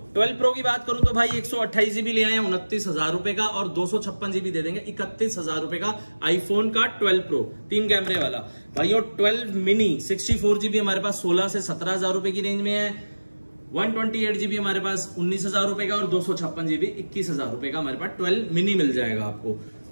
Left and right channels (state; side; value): inverted; both; correlation -1.00